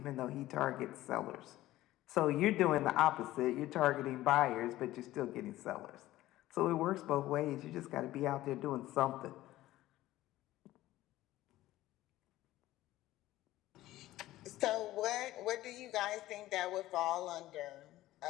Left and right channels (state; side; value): quieter; right; 15.8 dB